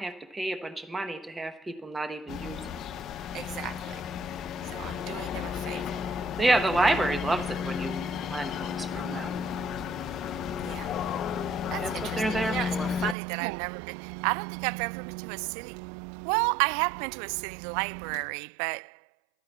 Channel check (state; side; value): drops out; left; at 13.2 s